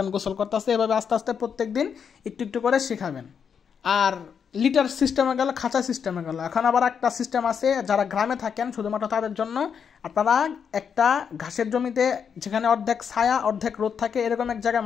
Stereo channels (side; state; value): right; quieter; 7.0 dB